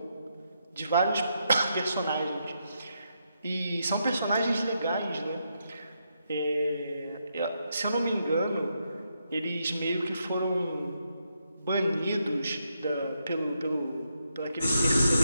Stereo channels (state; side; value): inverted; both; correlation -0.81